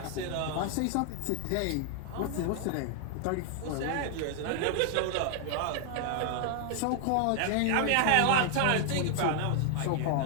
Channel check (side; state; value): both; different; correlation 0.00